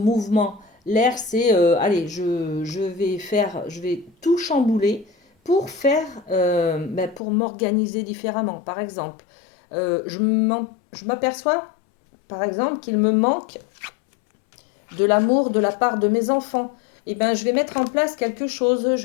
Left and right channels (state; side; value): drops out; right; at 7.2 s